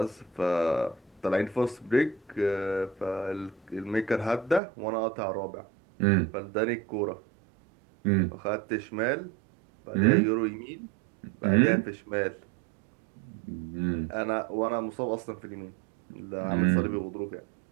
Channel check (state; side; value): drops out; left; at 4.6 s